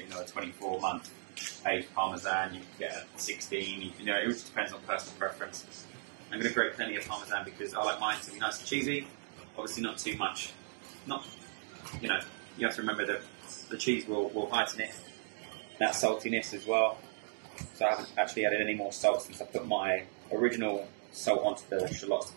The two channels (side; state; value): left; silent; digital silence